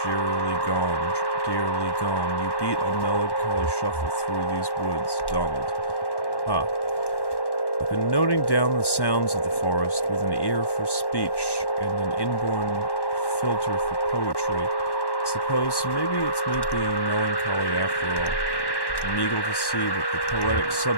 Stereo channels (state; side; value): late; right; 1.1 ms